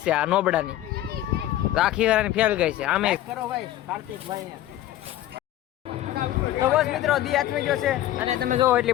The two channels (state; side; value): quieter; right; 13.7 dB